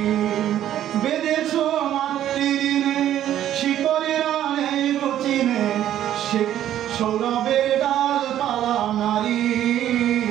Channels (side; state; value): left; quieter; 11.6 dB